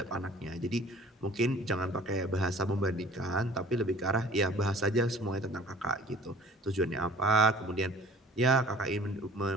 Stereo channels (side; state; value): both; normal; correlation 0.49